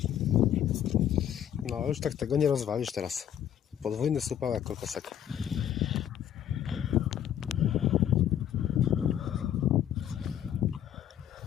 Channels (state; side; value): quieter; right; 10.2 dB